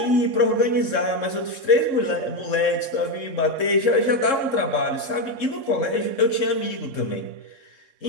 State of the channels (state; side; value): late; right; 3.7 ms